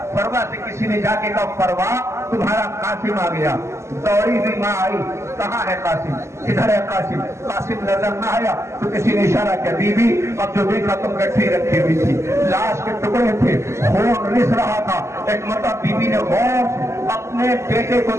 فروا سے کسی نے جا کے کہا فروا تمہارا قاسم آ گیا. دوڑی ہوئی ماں آئی، کہاں ہے قاسم؟ ادھر ہے قاسم. قاسم نظر نہ آیا تو کسی نے اشارہ کیا، بی بی اب جو دیکھا تم گٹھی رکھی ہوئی تھی، لاش کے ٹکڑے تھے، خون رس رہا تھا. ایک مرتبہ بی بی نے غور سے اپنے بیٹے کو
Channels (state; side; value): late; left; 0.13 ms